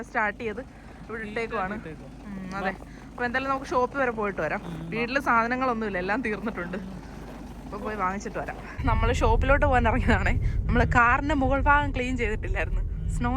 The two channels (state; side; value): identical; both; correlation 1.00